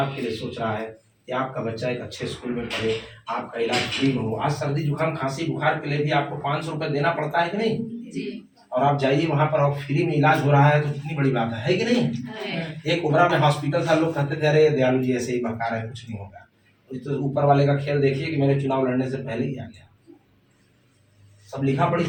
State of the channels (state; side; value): identical; both; correlation 1.00